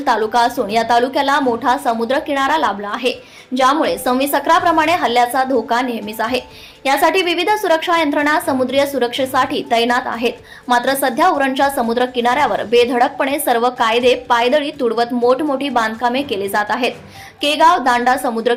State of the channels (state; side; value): identical; both; correlation 1.00